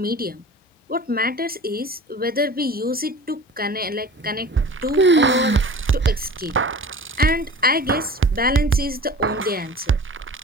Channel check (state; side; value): normal; both; correlation 0.40